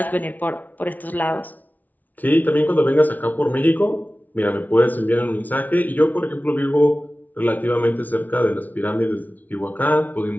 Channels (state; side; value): late; right; 0.078 ms